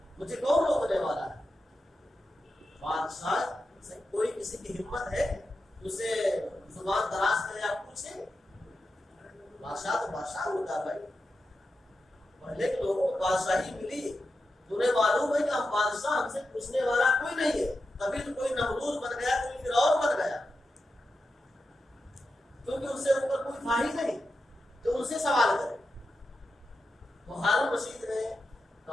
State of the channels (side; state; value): both; normal; correlation 0.90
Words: مجھے کون روکنے والا ہے؟ بادشاہ سے کوئی کسی کی ہمت ہے اسے زبان دراز کرے آپ پوچھیں؟ بادشاہ تو بادشاہ ہوتا بھائی، پہلے کے لوگوں کو بادشاہی ملی، تمہیں معلوم ہے کہ ہم بادشاہ، ہم سے پوچھنے والا کوئی نہیں ہے، تبھی تو کوئی نمرود بن گیا، کوئی فرعون بن گیا، کیونکہ ان سے اوپر کوئی تھا ہی نہیں جو ان سے سوال کرے۔ تو ہارون رشید نے